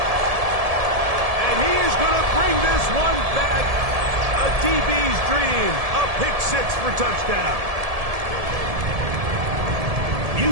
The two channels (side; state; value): left; late; 1.7 ms